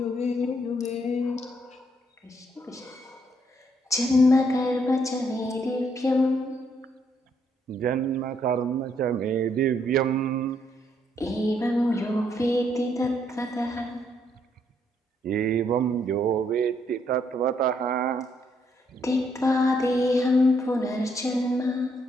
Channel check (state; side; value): normal; both; correlation 0.72